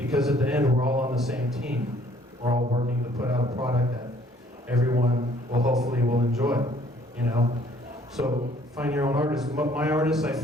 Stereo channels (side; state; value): both; normal; correlation 0.60